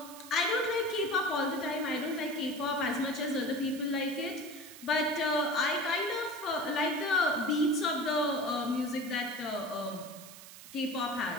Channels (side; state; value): right; noise; hiss, 16 dB below the sound